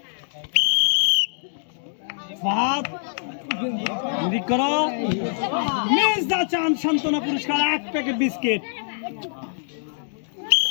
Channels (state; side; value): silent; right; digital silence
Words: ফাদ নিরিখ করো। মিস দা চান্স সান্ত্বনা পুরস্কার 1 প্যাকেট বিস্কিট।